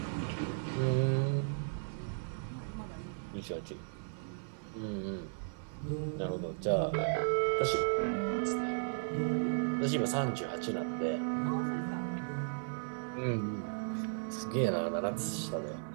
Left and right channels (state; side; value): silent; left; digital silence